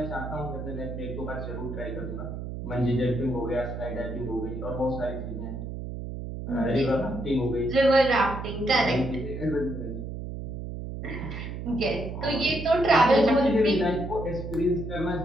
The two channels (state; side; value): noise; right; hum, 7 dB below the sound